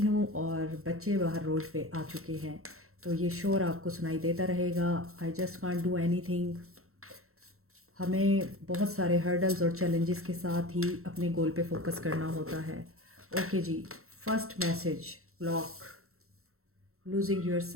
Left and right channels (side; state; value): left; late; 0.63 ms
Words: और बच्चे बाहर रोड पे आ चुके हैं, तो ये शोर आपको सुनाई देता रहेगा। I just can't do anything. हमें बहुत सारे हर्डल्स और चैलेंजेस के साथ ही अपने गोल पे फोकस करना होता है। ओके जी, first message, block, losing your